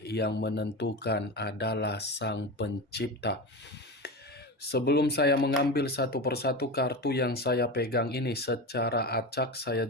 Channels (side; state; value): both; normal; correlation 0.23